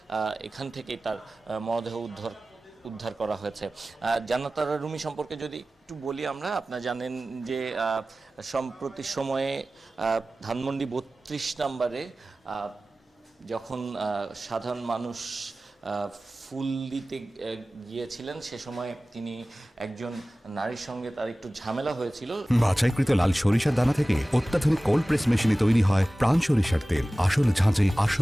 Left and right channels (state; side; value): normal; both; correlation 0.97